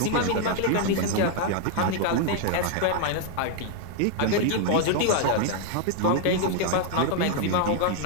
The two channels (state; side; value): different; both; correlation 0.00